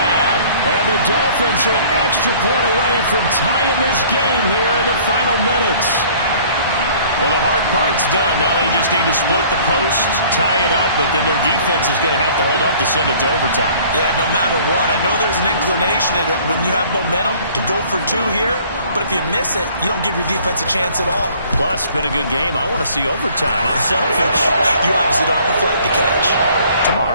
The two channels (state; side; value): inverted; both; correlation -0.53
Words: And the Dolphins are an extra point away from tying this game here in the final minutes. Well, the hard part's done. Now they just need to split the posts, tie it up, but then their defense is going to have to hold up to send it to overtime. Yeah, no matter what. I know there's an inclination in it when you have momentum to go for 2 here, but if you miss it, you don't give your defense a chance at all. Plus, it's been a good game. I want to see overtime. I'm selfish. You obviously don't have a flight to catch.